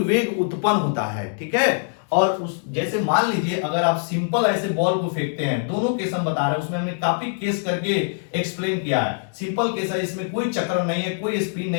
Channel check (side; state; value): right; silent; digital silence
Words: उत्पन्न होता है। ठीक है, और उस जैसे मान लीजिए अगर आप सिंपल ऐसे बॉल को फेंकते हैं, दोनों केस हम बता रहे हैं, उसमें हमने काफी केस करके एक्सप्लेन किया है। सिंपल केस है, इसमें कोई चक्र नहीं है, कोई स्पिन